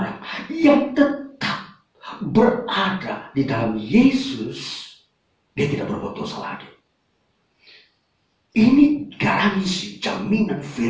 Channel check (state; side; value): identical; both; correlation 1.00